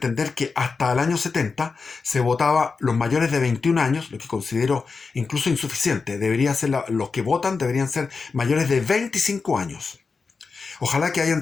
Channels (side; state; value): right; quieter; 4.7 dB